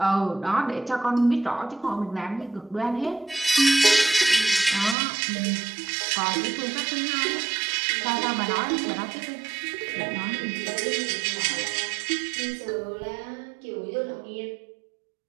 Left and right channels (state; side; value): drops out; left; at 5.0 s